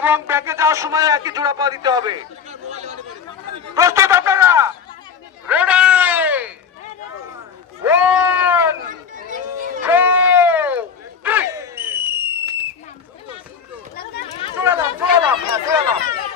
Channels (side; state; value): right; quieter; 6.7 dB